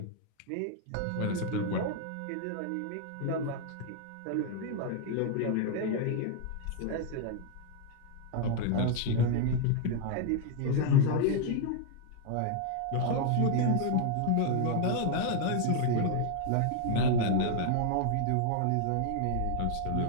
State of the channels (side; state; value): both; different; correlation 0.00